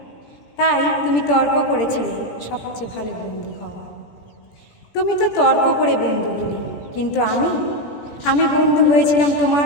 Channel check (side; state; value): right; late; 17 ms